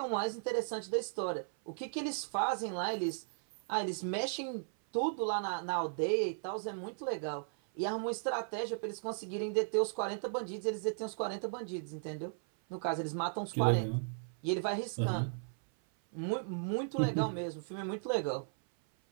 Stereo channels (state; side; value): silent; left; 54 dB below the other